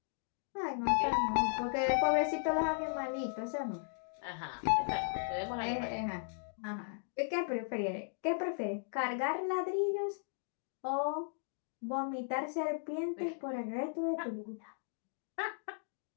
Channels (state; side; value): silent; right; digital silence